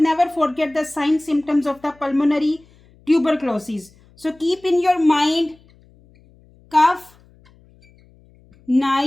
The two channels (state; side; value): noise; left; hum, 29 dB below the sound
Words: forget the sign symptoms of the pulmonary tuberculosis. So keep in your mind cough,